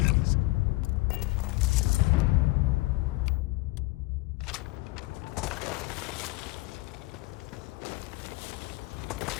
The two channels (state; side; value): quieter; right; 22.3 dB